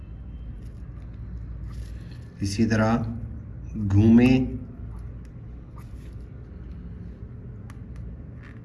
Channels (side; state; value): both; identical; correlation 1.00